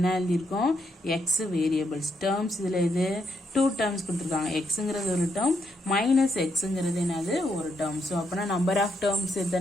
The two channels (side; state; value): both; normal; correlation 0.78